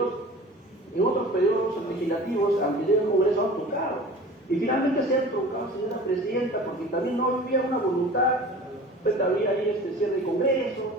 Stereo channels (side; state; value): both; normal; correlation 0.40